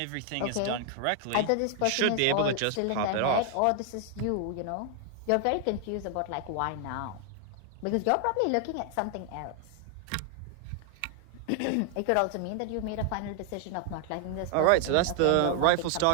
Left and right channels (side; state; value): both; different; correlation 0.00